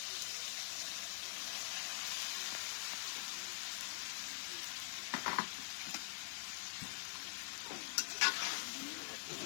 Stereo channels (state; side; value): silent; right; digital silence